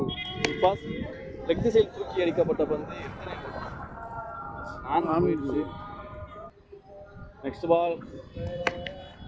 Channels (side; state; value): both; identical; correlation 1.00